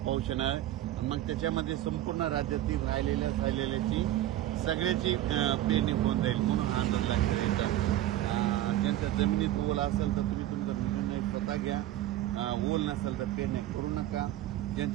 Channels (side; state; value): left; quieter; 13.8 dB